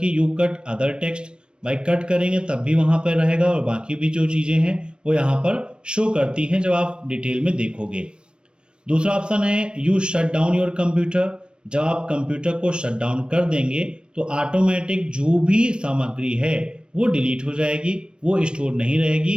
यू कट अदर टेक्स्ट। भाई कट करेंगे तब भी वहां पर रहेगा, और बाकी भी जो चीजें हैं वो यहाँ पर शो करती हैं जब आप डिटेल में देखोगे। दूसरा ऑप्शन है you shut down your computer. जब आप कंप्यूटर को शट डाउन कर देंगे तो ऑटोमेटिक जो भी सामग्री है वो डिलीट हो जाएगी, वो स्टोर नहीं रहेगी।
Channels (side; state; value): left; late; 0.055 ms